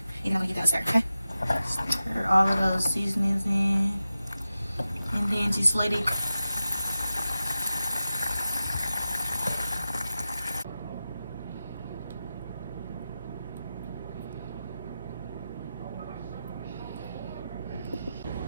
and you're not going to get that stir, okay? Stir all of those seasonings in, and then just let it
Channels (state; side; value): inverted; both; correlation -0.92